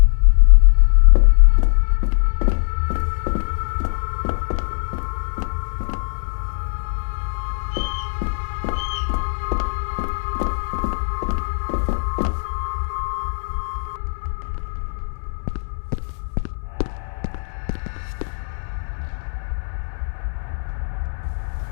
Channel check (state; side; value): silent; right; digital silence